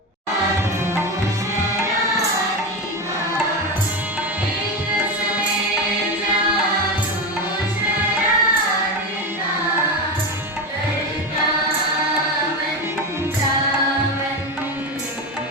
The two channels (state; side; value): normal; both; correlation 0.18